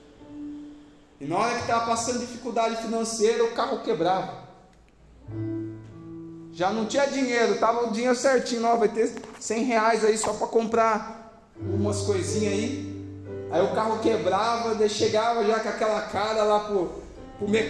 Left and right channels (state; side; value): identical; both; correlation 1.00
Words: e na hora que estava passando dificuldade financeira, o carro quebrava. Já não tinha dinheiro, estava o dinheiro certinho, ó, vai ter 100 reais aí só para comprar umas coisinhas aí. Aí o carro quebrava, daí chegava já com aquela cara lá pro